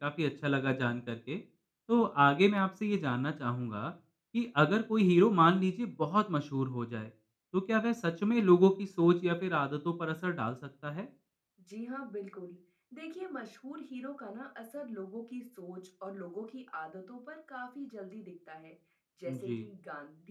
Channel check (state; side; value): identical; both; correlation 1.00